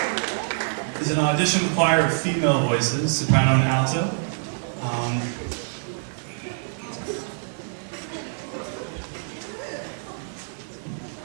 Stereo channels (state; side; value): silent; left; digital silence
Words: is an audition choir of female voices, soprano and alto.